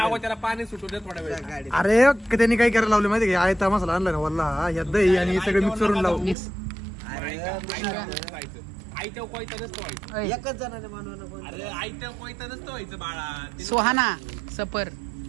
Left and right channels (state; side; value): drops out; left; at 6.4 s